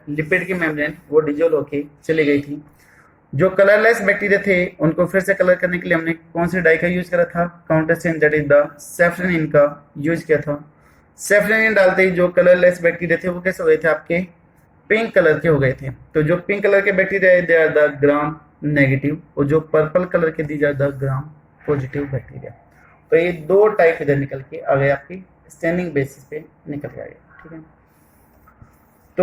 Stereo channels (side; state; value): both; identical; correlation 1.00